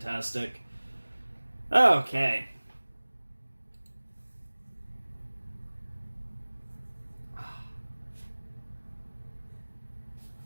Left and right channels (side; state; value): both; inverted; correlation -1.00